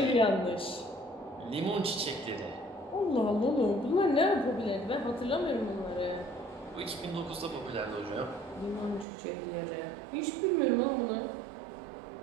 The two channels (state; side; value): drops out; left; at 9.1 s